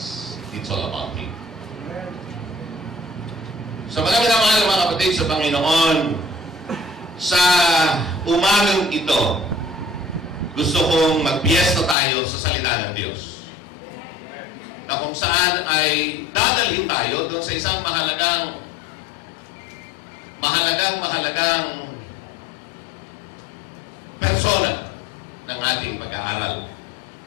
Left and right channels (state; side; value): drops out; right; at 12.0 s